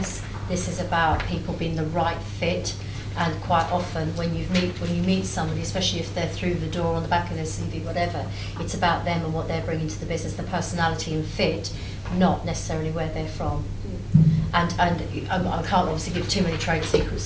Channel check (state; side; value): identical; both; correlation 1.00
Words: This is about people being the right fit. And quite often, when you meet somebody, especially if they're through the door on the back of their CV, whatever, it's about them and what they're bringing to the business, the personality and fit, not necessarily where they're from. And I can't obviously give too many trade